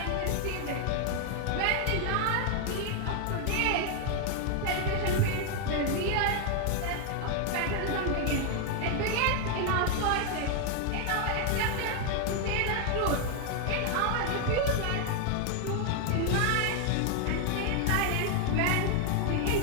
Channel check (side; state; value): both; different; correlation 0.00